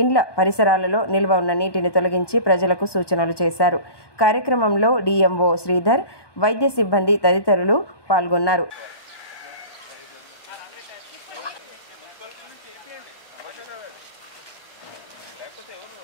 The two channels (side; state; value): right; late; 1.1 ms